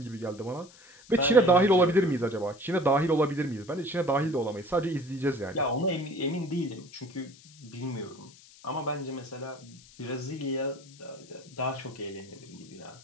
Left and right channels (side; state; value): left; noise; hiss, 23 dB below the sound